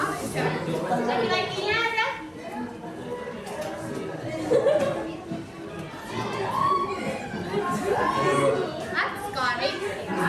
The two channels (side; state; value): both; identical; correlation 1.00